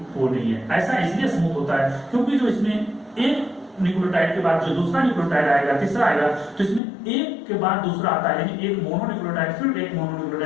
वो नहीं है। ऐसा इसलिए स्मूथ होता है क्योंकि जो इसमें एक न्यूक्लियोटाइड के बाद जो दूसरा न्यूक्लियोटाइड आएगा, तीसरा आएगा, तो इसमें एक के बाद दूसरा आता है, यानी एक मोनोन्यूक्लियोटाइड फिर एक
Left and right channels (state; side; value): drops out; right; at 6.8 s